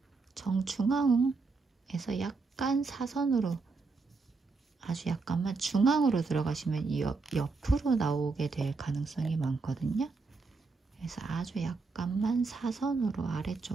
정중앙에서 약간 사선으로 아주 약간만 중앙으로 들어가시면 이 옆으로 나오게 될 가능성이 많거든요. 그래서 아주 약간만 사선으로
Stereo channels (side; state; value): left; quieter; 4.2 dB